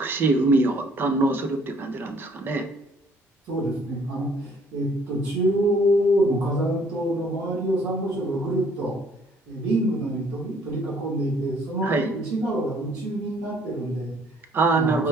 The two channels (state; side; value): normal; both; correlation 0.61